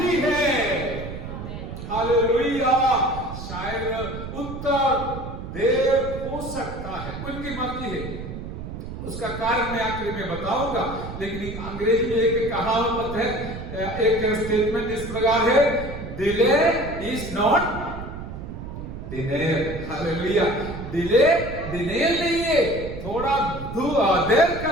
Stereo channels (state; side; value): noise; right; rumble, 9 dB below the sound